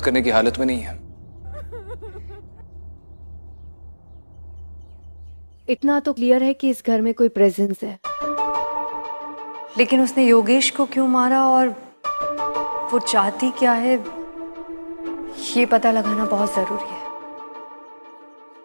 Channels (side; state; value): both; inverted; correlation -1.00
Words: करने की हालत में नहीं है। इतना तो क्लियर है कि इस घर में कोई प्रेजेंस है, लेकिन उसने योगेश को क्यों मारा और वो चाहती क्या है, ये पता लगाना बहुत जरूरी है।